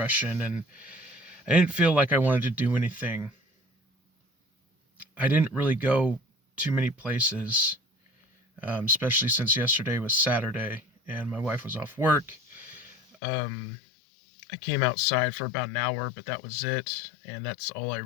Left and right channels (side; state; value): right; drops out; at 13.2 s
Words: and I didn't feel like I wanted to do anything. I didn't really go too many places, especially since yesterday was Saturday and my wife was off work. Um, I came outside for about an hour, but that was it, and that's all I